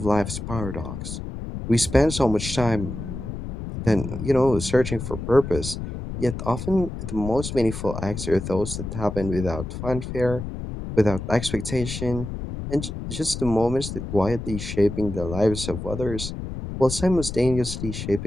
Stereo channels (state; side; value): noise; left; rumble, 7 dB below the sound